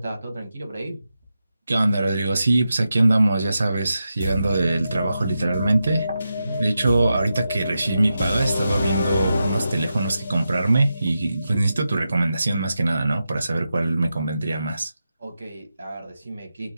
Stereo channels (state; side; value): inverted; both; correlation -0.89